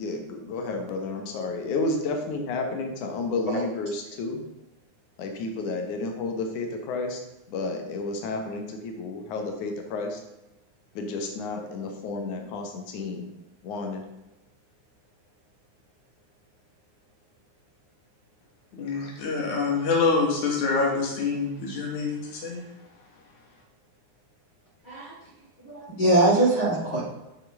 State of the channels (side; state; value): right; late; 9.6 ms